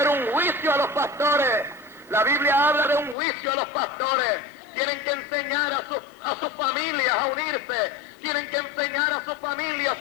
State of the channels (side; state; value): right; drops out; at 3.2 s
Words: un juicio a los pastores. La Biblia habla de un juicio a los pastores. Tienen que enseñar a sus familias a unirse. Tienen que enseñar a sus